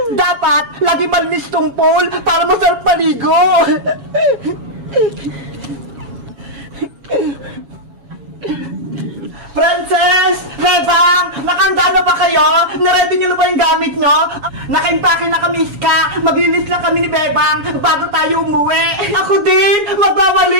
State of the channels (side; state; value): left; late; 7.2 ms